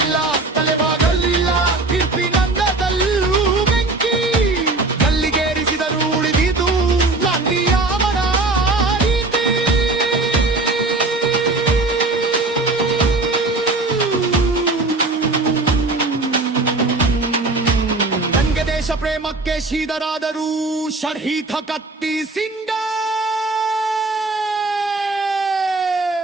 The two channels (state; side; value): quieter; left; 3.3 dB